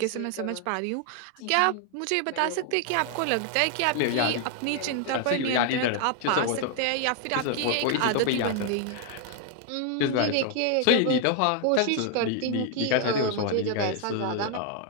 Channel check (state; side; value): different; both; correlation 0.00